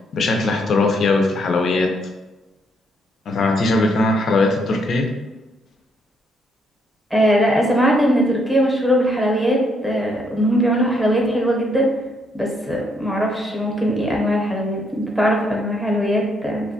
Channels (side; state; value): both; normal; correlation 0.73